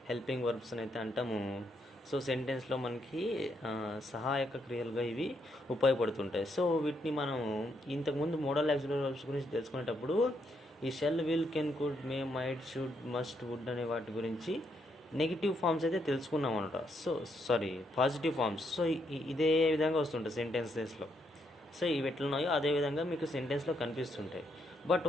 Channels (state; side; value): normal; both; correlation 0.76